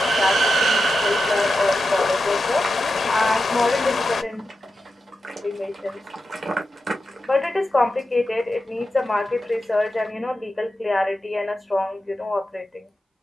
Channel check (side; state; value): both; normal; correlation 0.90